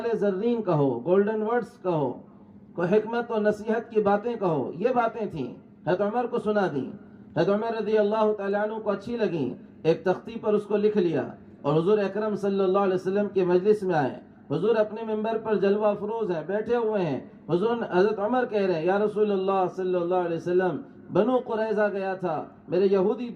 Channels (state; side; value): identical; both; correlation 1.00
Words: زرین کہو، گولڈن ورڈز کہو، کوئی حکمت و نصیحت کی باتیں کہو، یہ باتیں تھیں، حضرت عمر کو سنا دیں۔ حضرت عمر رضی اللہ تعالیٰ عنہ کو اچھی لگیں، ایک تختی پر اس کو لکھ لیا اور حضور اکرم صلی اللہ علیہ وسلم کے مجلس میں آئے۔ حضور اپنے منبر پر جلوہ افروز ہیں، بیٹھے ہوئے ہیں۔ حضرت عمر کہہ رہے ہیں یا رسول اللہ صلی اللہ علیہ وسلم، بنو قریظہ گیا تھا، میرے یہودی